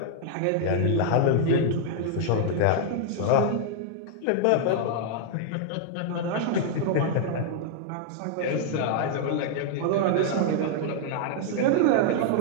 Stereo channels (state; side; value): different; both; correlation -0.01